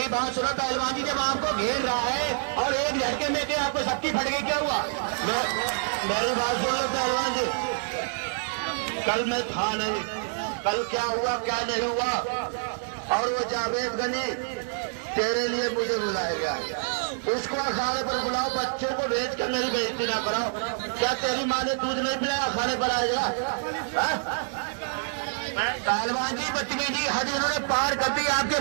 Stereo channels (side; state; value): left; silent; 59 dB below the other